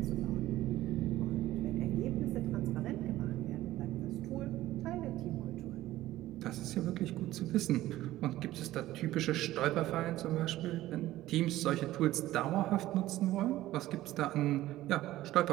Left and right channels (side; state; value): left; quieter; 15.4 dB